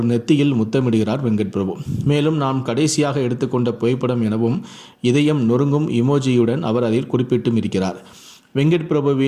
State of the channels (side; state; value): both; identical; correlation 1.00